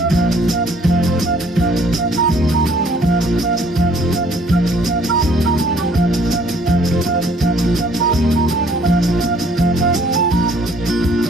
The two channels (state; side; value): normal; both; correlation 0.60